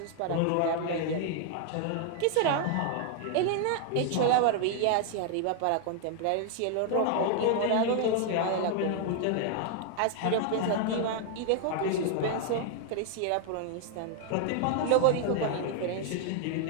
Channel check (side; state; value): both; different; correlation 0.00